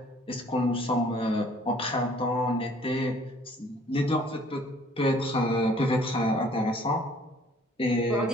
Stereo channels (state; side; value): normal; both; correlation 0.57